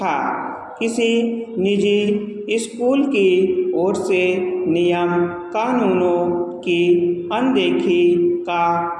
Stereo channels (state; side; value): identical; both; correlation 1.00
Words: किसी निजी स्कूल की ओर से नियम कानूनों की अनदेखी का